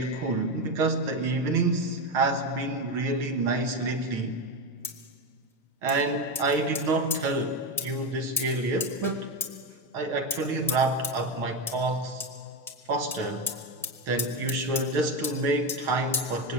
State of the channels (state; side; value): normal; both; correlation 0.14